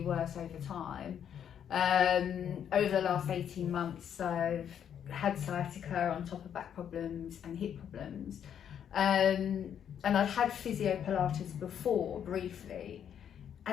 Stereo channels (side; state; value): right; quieter; 8.9 dB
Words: worse over time. Over the last 18 months I've had sciatica on top of back problems and hip problems, and I've had Physiotherapy before briefly,